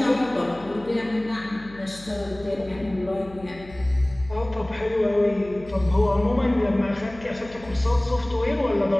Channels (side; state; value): left; noise; hum, 19 dB below the sound